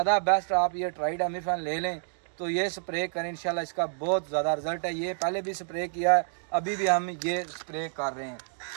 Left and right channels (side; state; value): left; silent; digital silence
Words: बेस्ट आप ये ट्राइडामिफान ले लें तो ये स्प्रे करें, इंशाल्लाह इसका बहुत ज़्यादा रिजल्ट है। ये पहले भी स्प्रे किया है, अभी भी हम ये स्प्रे कर रहे हैं।